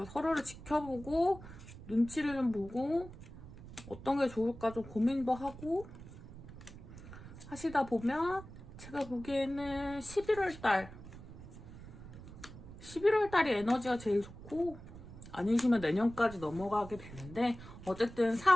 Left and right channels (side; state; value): right; noise; rumble, 15 dB below the sound